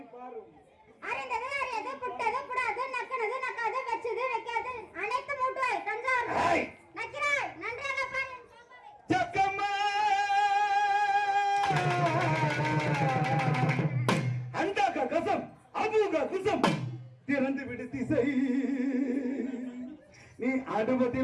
பாரும். அறிந்தது அறியது புட்டது புடாது நக்கனது நக்காது வெச்சது வைக்காது அனைத்து மூட்டுவாய் தஞ்சாவூர் நக்கிறாய் நன்றாக பாரு. ஜக்கம்மா அண்டாக கசம் அபூக குசம் திறந்து விடு திசை நீ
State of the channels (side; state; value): both; identical; correlation 1.00